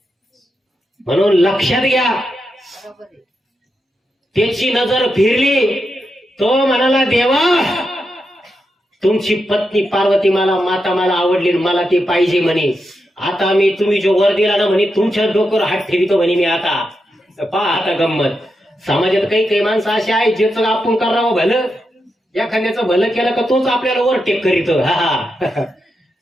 म्हणून लक्षात घ्या, त्याची नजर फिरली. तो म्हणाला, देवा तुमची पत्नी पार्वती माता मला आवडली, मला ती पाहिजे म्हणे. आता मी तुम्ही जो वर दिला ना म्हणे, तुमच्या डोक्यावर हात ठेवितो म्हणे मी. आता पहा आता गंमत. समाजात काही माणसं अशी आहेत, ज्याचं आपण करावं भलं, एखाद्याचं भलं केलं का तोच आपल्याला वर टेक करीतो.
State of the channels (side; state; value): both; normal; correlation 0.86